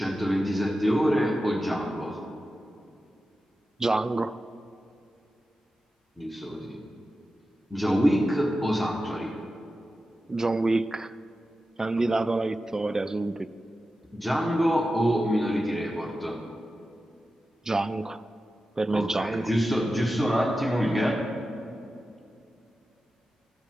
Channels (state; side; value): normal; both; correlation 0.92